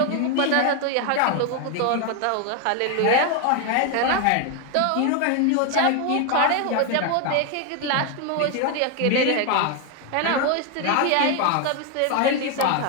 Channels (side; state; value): both; different; correlation 0.01